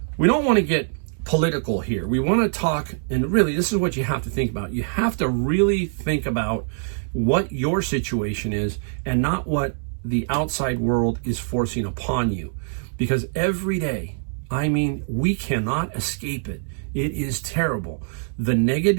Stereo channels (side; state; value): left; silent; digital silence